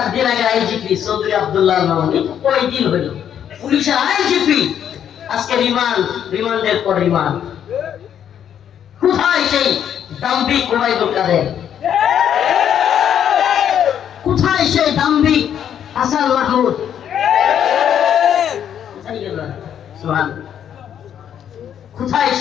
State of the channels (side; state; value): right; quieter; 9.3 dB